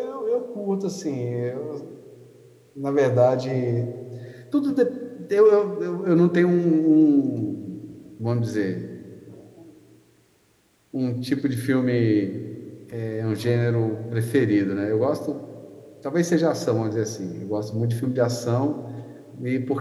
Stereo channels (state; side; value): identical; both; correlation 1.00